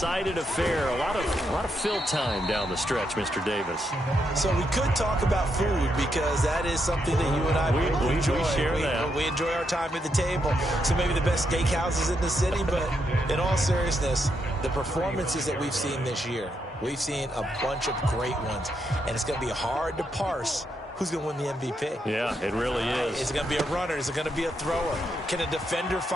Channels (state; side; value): normal; both; correlation 0.80